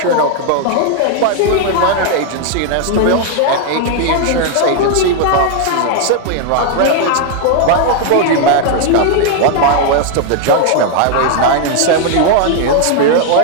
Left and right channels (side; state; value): both; different; correlation 0.00